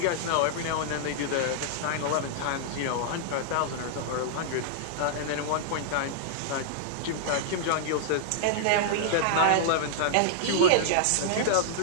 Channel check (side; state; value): both; different; correlation -0.01